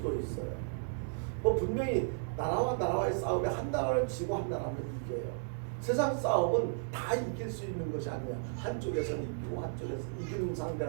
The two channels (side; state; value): left; silent; 55 dB below the other